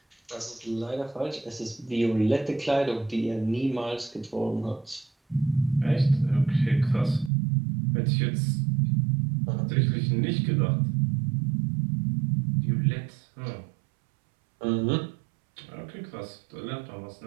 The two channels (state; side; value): drops out; left; at 7.3 s